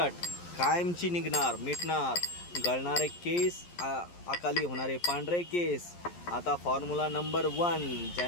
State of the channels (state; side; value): late; right; 11 ms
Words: कायमची निघणार मिटणार. गळणारे केस, अकाली होणारे पांढरे केस. आता फॉर्म्युला नंबर 1.